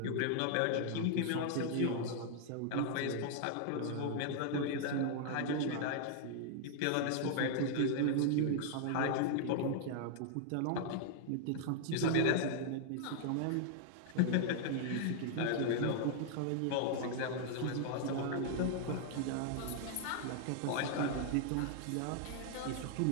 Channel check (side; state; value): both; different; correlation -0.01